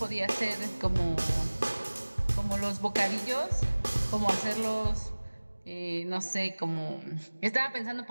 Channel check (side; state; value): both; inverted; correlation -1.00